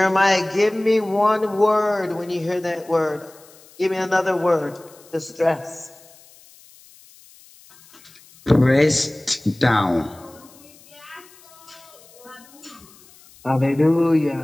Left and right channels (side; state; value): left; noise; hiss, 25 dB below the sound